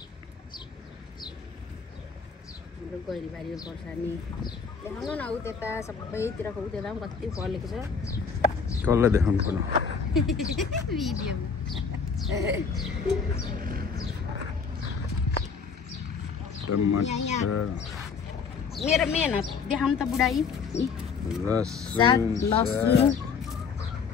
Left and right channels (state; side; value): quieter; right; 5.7 dB